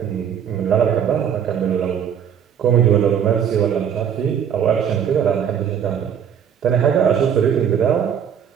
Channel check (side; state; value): left; quieter; 8.4 dB